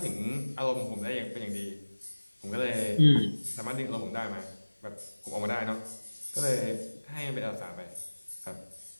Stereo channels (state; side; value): inverted; both; correlation -1.00